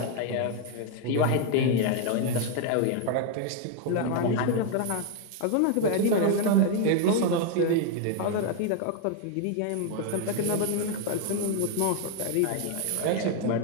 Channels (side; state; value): both; different; correlation 0.00